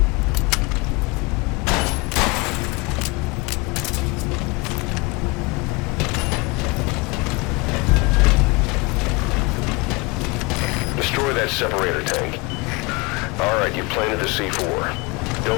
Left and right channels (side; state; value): right; quieter; 26.4 dB